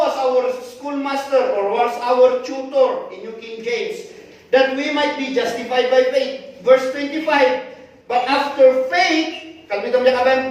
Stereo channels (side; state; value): both; identical; correlation 1.00